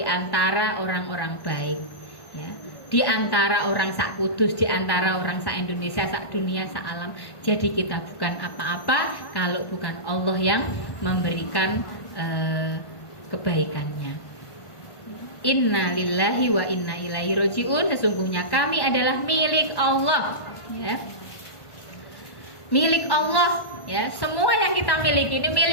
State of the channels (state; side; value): late; right; 1.5 ms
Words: antara orang-orang baik, ya. Di antara orang sak kudus, di antara orang sak Indonesia, sak dunia, sak alam. Jadi kita bukan apa-apa kalau bukan Allah yang memberikan kebaikannya. Inna lillahi wa inna ilaihi raji'un. Sesungguhnya kami adalah milik Allah, ya. Milik Allah, ya. Semua yang kita miliki ini